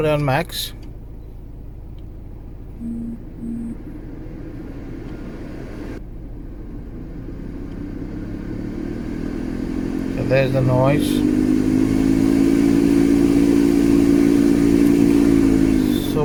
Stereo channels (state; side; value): identical; both; correlation 1.00